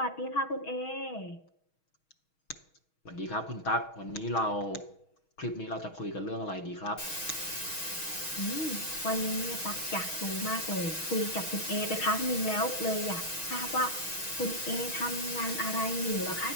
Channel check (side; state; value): right; late; 6.3 ms